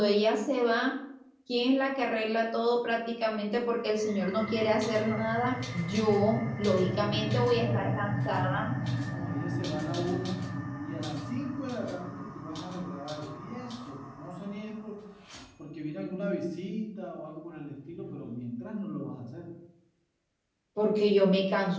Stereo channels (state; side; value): identical; both; correlation 1.00